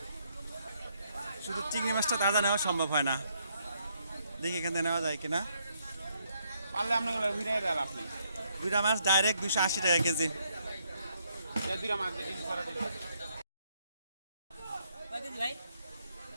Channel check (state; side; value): inverted; both; correlation -0.73